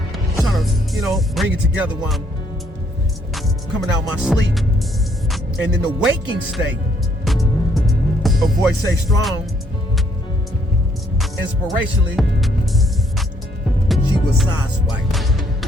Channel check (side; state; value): both; normal; correlation 0.69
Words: trying to, bring it together while I'm coming out my sleep. And in the waking state, a voice say strong, inspirationally, she was sideswiped.